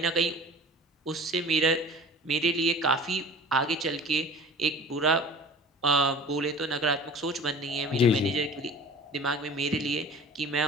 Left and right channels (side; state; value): both; normal; correlation 0.42